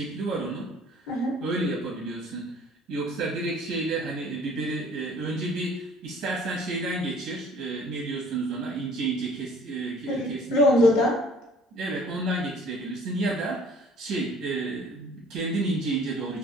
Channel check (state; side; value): normal; both; correlation 0.53